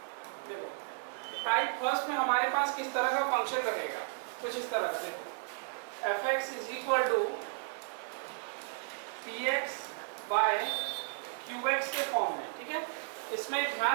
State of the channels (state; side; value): silent; left; 55 dB below the other